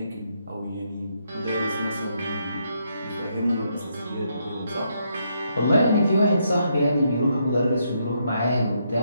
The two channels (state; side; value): inverted; both; correlation -0.77